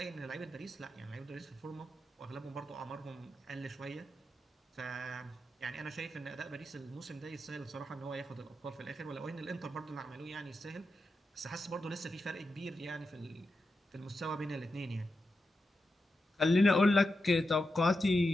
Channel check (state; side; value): normal; both; correlation 0.88